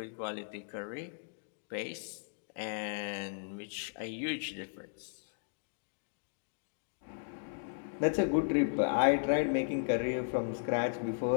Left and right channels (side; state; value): right; silent; digital silence